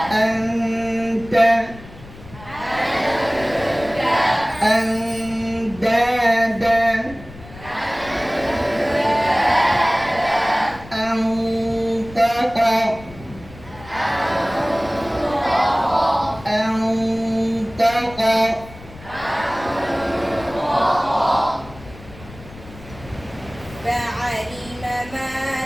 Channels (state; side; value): noise; left; rumble, 18 dB below the sound